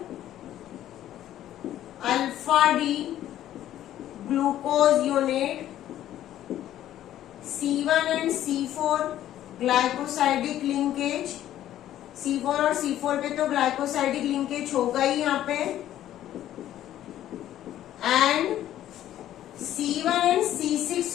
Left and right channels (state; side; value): quieter; right; 12.4 dB